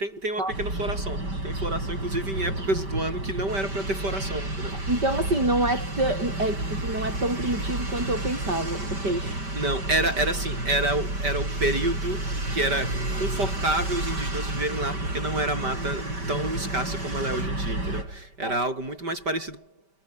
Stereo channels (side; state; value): left; late; 5.1 ms